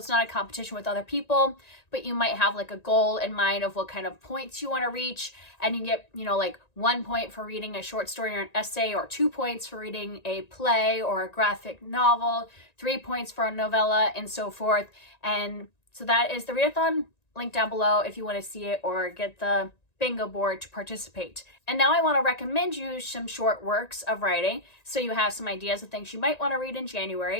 not a competition with other people, but you might have like a goal in mind of what kind of points you want to reach. And you get, 1 point for reading a short story or an essay, or 2 points for reading a play or a graphic novel, 3 points for a novella, and so forth. And so that is the readathon. Link down below if you want to see it or get the bingo board to participate. And now I want to recommend you some short works of writing so you have some ideas of things you might want to read in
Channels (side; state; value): right; late; 1.9 ms